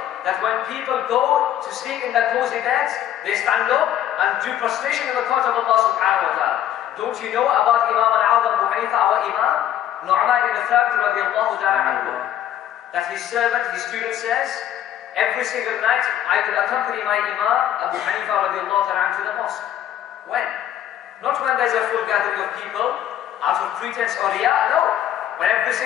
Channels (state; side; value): quieter; right; 11.2 dB